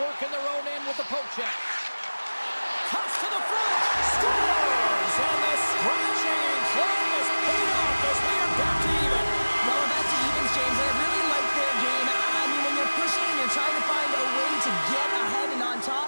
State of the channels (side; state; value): both; inverted; correlation -1.00